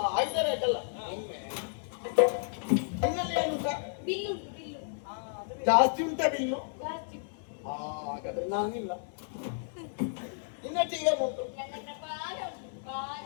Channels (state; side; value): silent; right; 56 dB below the other